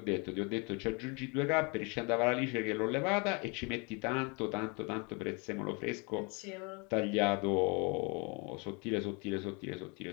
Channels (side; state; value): right; quieter; 31.0 dB